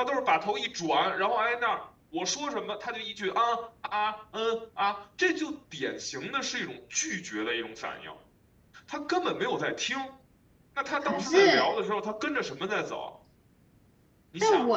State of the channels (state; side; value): identical; both; correlation 1.00